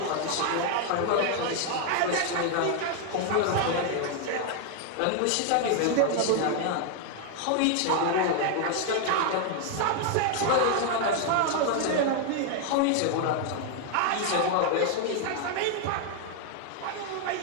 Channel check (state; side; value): different; both; correlation 0.00